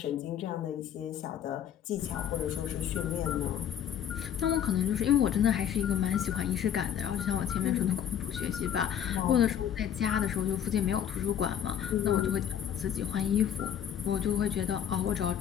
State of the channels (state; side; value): quieter; right; 9.4 dB